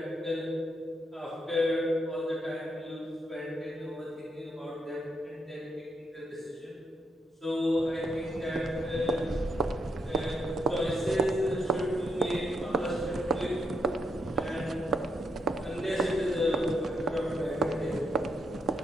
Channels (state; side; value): normal; both; correlation 0.79